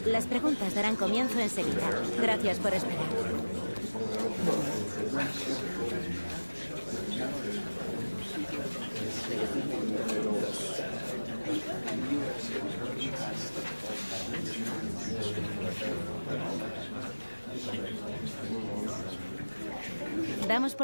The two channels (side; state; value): both; inverted; correlation -1.00